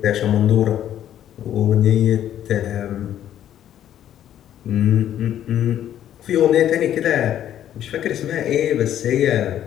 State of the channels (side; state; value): right; quieter; 11.1 dB